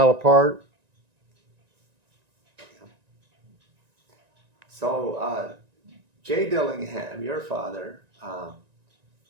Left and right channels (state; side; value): late; left; 1.9 ms